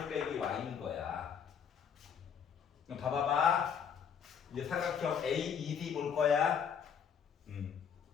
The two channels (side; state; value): right; quieter; 7.4 dB